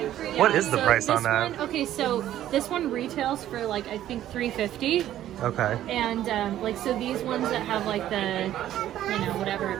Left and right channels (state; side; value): quieter; left; 12.4 dB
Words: What is the price on that? Okay, so this one retails for like, I think $350. Okay. And so these ones that have like the, whatever,